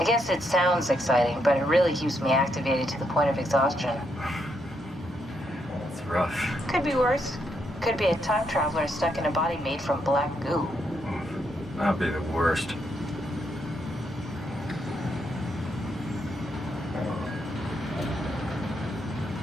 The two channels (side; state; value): both; normal; correlation 0.77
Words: guess it sounds exciting, but it really keeps me activated to the point of exhaustion. It's rough. Could be worse. Could be a time traveler stuck in a body made from black goo. That'd be the worst.